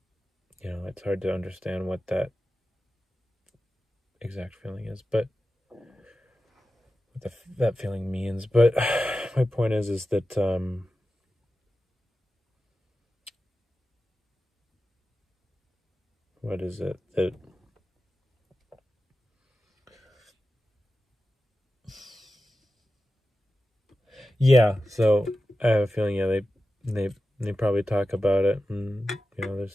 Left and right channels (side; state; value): both; normal; correlation 0.93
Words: it's hard to understand what that exact feeling is, but what that feeling means. But my point is that what is it that yeah, so I have a feeling, yeah, they probably talk about it, and they're